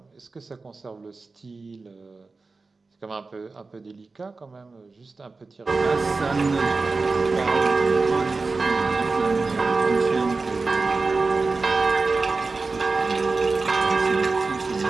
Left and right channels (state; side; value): quieter; left; 3.9 dB